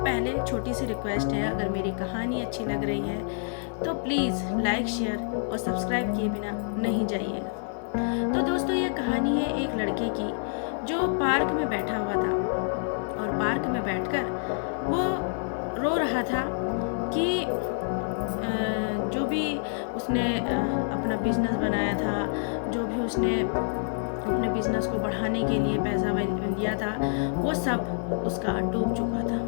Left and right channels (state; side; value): silent; right; digital silence